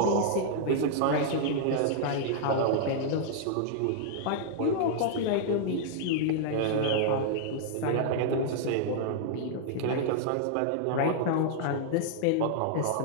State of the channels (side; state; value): both; different; correlation -0.01